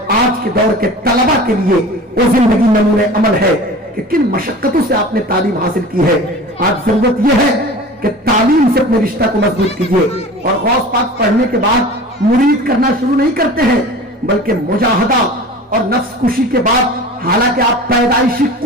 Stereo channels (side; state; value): both; normal; correlation 0.38